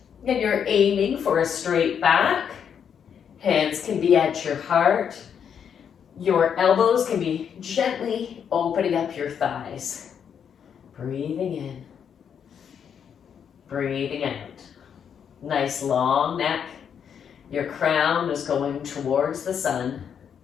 And you're aiming for a straight back. Hands can be at your heart. Your elbows can be gently opening up your thighs. Breathing in. Breathing out. Nice long neck. Your crown is going towards the sun.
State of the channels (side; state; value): right; quieter; 7.8 dB